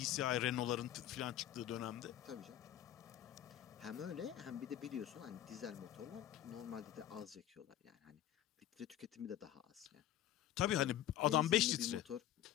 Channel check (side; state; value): right; quieter; 12.2 dB